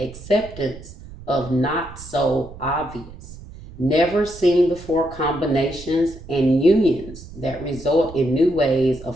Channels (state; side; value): noise; right; rumble, 16 dB below the sound